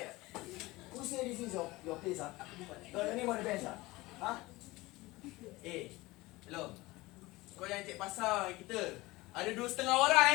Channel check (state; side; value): quieter; right; 20.6 dB